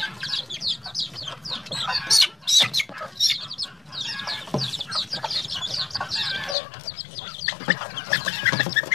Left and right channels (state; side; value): drops out; right; at 6.6 s